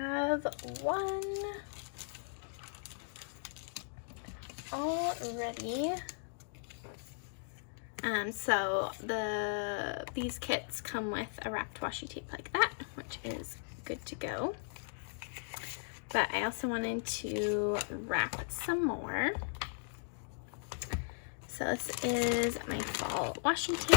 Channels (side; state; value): right; silent; digital silence